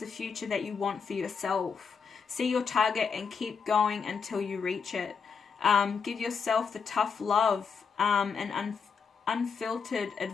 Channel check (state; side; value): quieter; right; 6.0 dB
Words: future that you want for yourself. See your target and keep going until you reach it. Give yourself the tough love and unfiltered